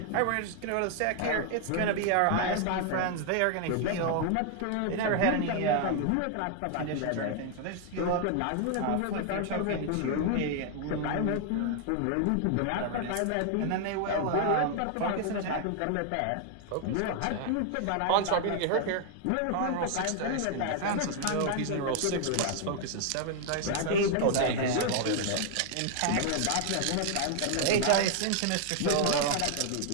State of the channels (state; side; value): different; both; correlation 0.00